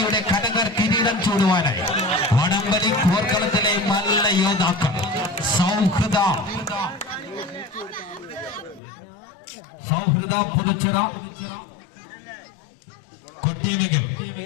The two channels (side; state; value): right; drops out; at 8.8 s